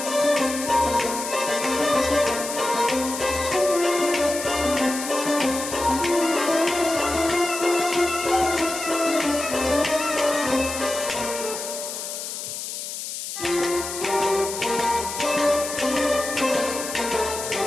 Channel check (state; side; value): noise; left; hiss, 7 dB below the sound